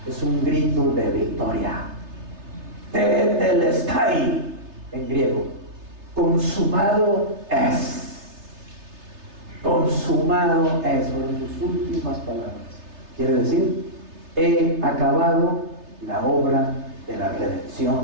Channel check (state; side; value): late; left; 3.3 ms